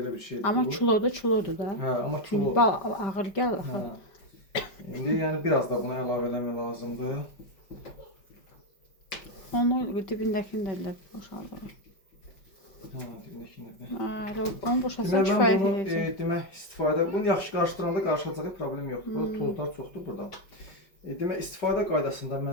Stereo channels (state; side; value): late; right; 5.3 ms